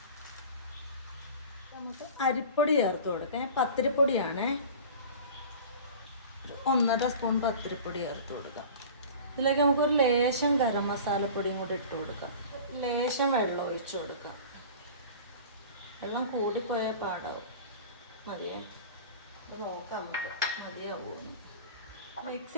നമുക്ക് അരിപ്പൊടി ചേർത്ത് കൊടുക്കാം. പത്തിരിപ്പൊടിയാണ്, 1.5 സ്പൂൺ പത്തിരിപ്പൊടി ചേർത്ത് കൊടുക്കാം. ഇതിലേക്ക് നമുക്കൊരു ലേശം ഗരം മസാലപ്പൊടിയും കൂടി ഇട്ട് കൊടുക്കാം. ലേശം വെള്ളം ഒഴിച്ചു കൊടുക്കാം. വെള്ളം കൂടിപ്പോയാൽ പാടാവും. മതിയേ, ഇത് നോക്കാം നമുക്ക് മതിയാവുമെന്ന്. മിക്സ്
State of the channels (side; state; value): both; inverted; correlation -0.39